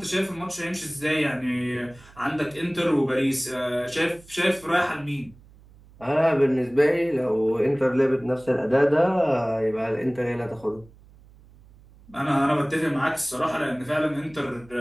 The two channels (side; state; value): right; noise; hum, 25 dB below the sound